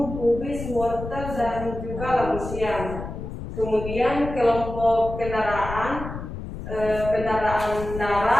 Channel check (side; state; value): left; noise; rumble, 8 dB below the sound